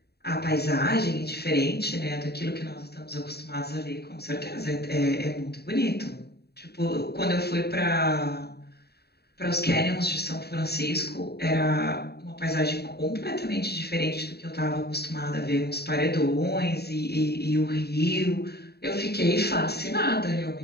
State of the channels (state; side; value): late; right; 0.47 ms